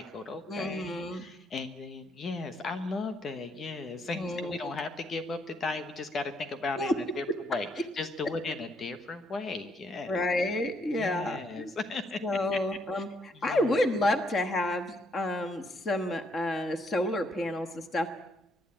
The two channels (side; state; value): both; normal; correlation 0.73